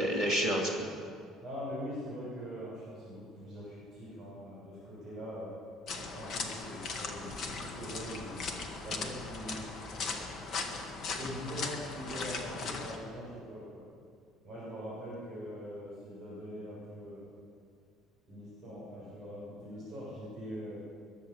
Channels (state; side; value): normal; both; correlation 0.56